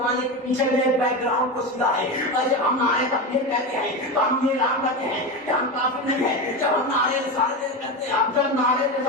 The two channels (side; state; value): both; normal; correlation 0.19